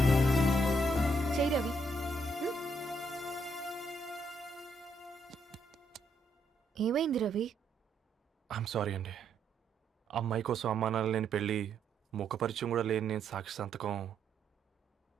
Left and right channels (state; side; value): normal; both; correlation 0.75